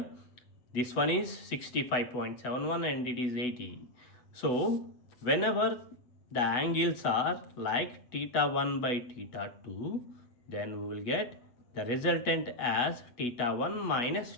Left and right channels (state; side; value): late; right; 8.1 ms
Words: this one is 65.71 and it is 80. So whenever the angles are like theta 1 by theta 2, then we will get the resultant as theta 1 minus